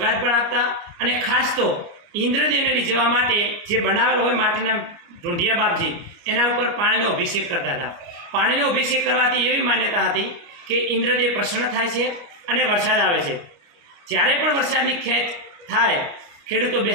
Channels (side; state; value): left; late; 29 ms